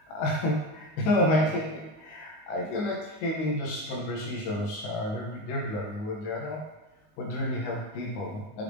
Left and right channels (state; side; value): late; right; 19 ms